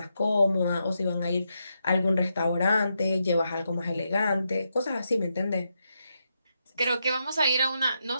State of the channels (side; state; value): both; inverted; correlation -0.83